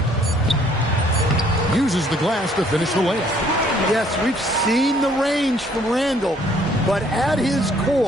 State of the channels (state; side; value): normal; both; correlation 0.62